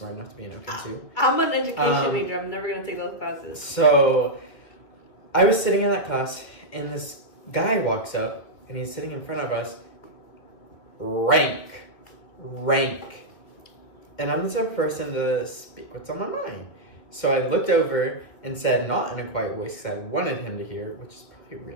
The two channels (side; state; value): right; late; 2.4 ms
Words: enough to be in OChem 2. I'm an education major. I'm never gonna take those classes. So I was sitting in that class, and this guy walks up, and he's sitting in front of us. Rank. And I'm the type of person to speak what's on my mind. So I looked over and said, not in a quiet voice, because I wanted him to hear, which is probably